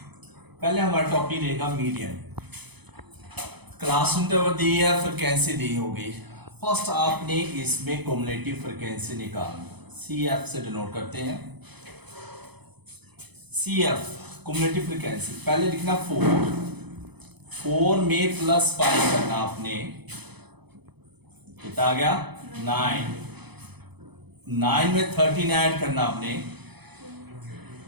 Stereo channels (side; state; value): left; late; 0.98 ms